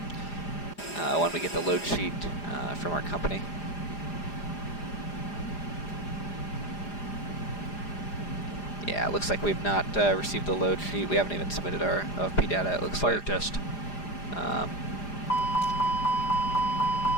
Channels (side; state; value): right; late; 4.9 ms